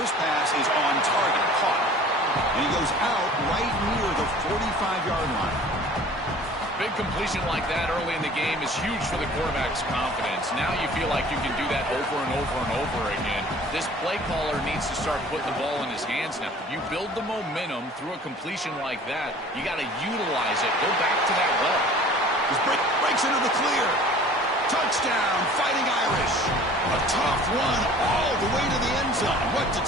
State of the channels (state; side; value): normal; both; correlation 0.47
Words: this pass is on target, caught. And he goes out right near the 45-yard line. Big completion like that early in the game is huge for the quarterback's confidence. Now you feel like you can do that over and over and over again. This play caller needs to start putting the ball in his hands now. If you build the momentum through a completion like that, you got to utilize it. Go back to that well. This breaks into the clear. Touchdown, Fighting Irish. A tough run all the way to the end zone. What